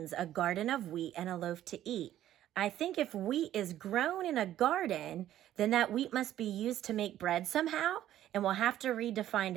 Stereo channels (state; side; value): quieter; left; 12.5 dB